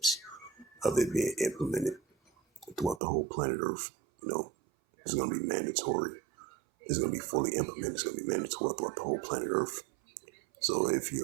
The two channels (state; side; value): drops out; left; at 3.0 s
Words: of it being implemented throughout the whole planet Earth. It's going to be mandatory. It's going to be fully implemented. It's going to be mandatory throughout the whole planet Earth. So if